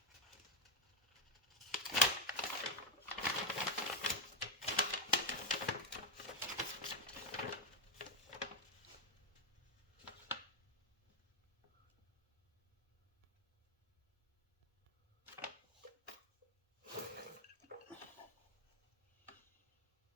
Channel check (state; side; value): normal; both; correlation 0.05